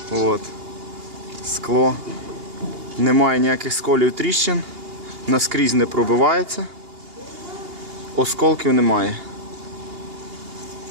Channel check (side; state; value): left; late; 2.8 ms